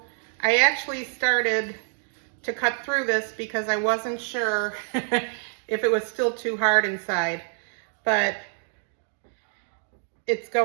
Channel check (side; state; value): left; silent; 55 dB below the other